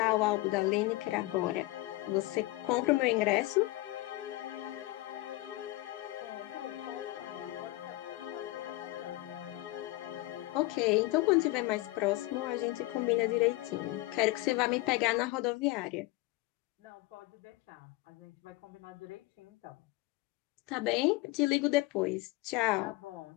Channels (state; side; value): quieter; right; 19.7 dB